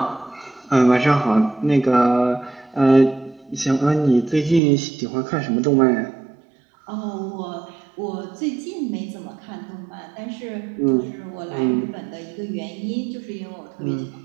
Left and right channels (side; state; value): left; drops out; at 4.6 s